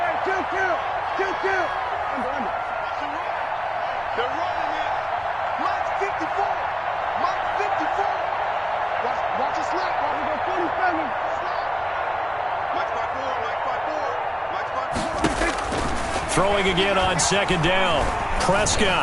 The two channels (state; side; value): identical; both; correlation 1.00